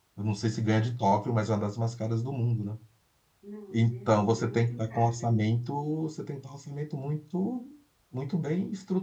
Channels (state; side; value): identical; both; correlation 1.00